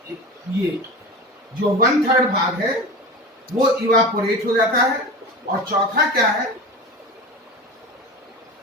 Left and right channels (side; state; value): both; normal; correlation 0.30